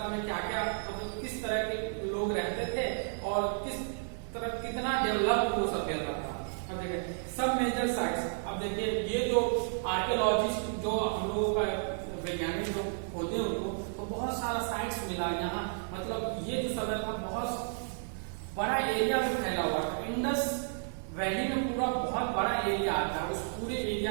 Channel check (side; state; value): left; silent; 56 dB below the other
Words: में क्या क्या मतलब किस तरह के लोग रहते थे और कितना डेवलप वो सभ्यता था। अब देखिए सब मेजर साइट्स। अब देखिए ये जो आर्कियोलॉजिस्ट जो हम लोगों का वैज्ञानिक जो होते हैं उनको तो बहुत सारा साइट्स मिला यहाँ। मतलब ये जो सभ्यता बहुत बड़ा एरिया में फैला हुआ था। इंडस वैली में पूरा बहुत बड़ा एरिया आता है, उस पूरे एरिया